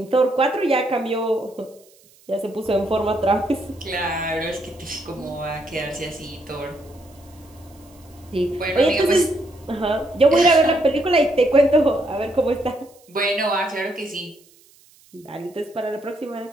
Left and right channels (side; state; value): right; noise; hiss, 29 dB below the sound